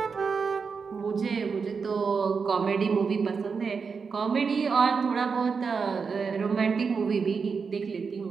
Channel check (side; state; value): left; quieter; 5.4 dB